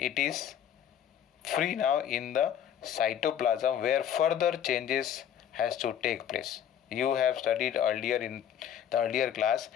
is free now in the cytoplasm where further changes has to take place. You have studied earlier in the earlier class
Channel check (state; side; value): quieter; right; 9.5 dB